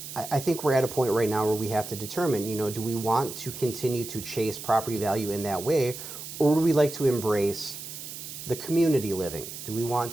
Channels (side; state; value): right; noise; hiss, 10 dB below the sound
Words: I think we're at a point right now where we have to determine, do we want to continue to chase property value in that way, or do we like to embrace the community living? Do we want